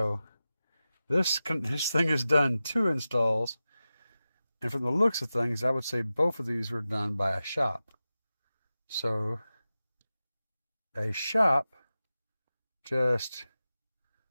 this thing has done 2 installs. And from the looks of things, I would say both of these were done by a shop. So a shop just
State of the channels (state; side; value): inverted; both; correlation -0.94